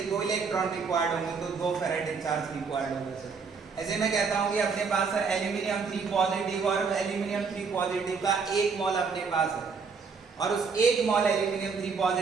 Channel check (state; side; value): quieter; left; 5.3 dB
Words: 2 इलेक्ट्रॉन रिक्वायर्ड होंगे तो 2 फैराडे चार्ज रिक्वायर्ड होगा सर। ऐसे मैं कहता हूँ कि अपने पास सर एल्यूमिनियम 3 पॉजिटिव और एल्यूमिनियम 3 पॉजिटिव का 1 मोल अपने पास है, और उस 1 मोल एल्यूमिनियम 3